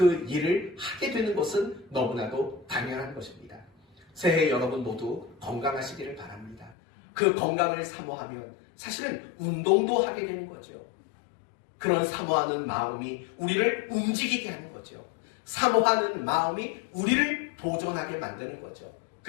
일을 하게 되는 것은 너무나도 당연한 것입니다. 새해 여러분 모두 건강하시기를 바랍니다. 그 건강을 사모하면 사실은 운동도 하게 되는 거죠. 그런 사모하는 마음이 우리를 움직이게 하는 거죠. 사모하는 마음이 우리를 도전하게 만드는 거죠.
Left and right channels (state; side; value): drops out; right; at 6.8 s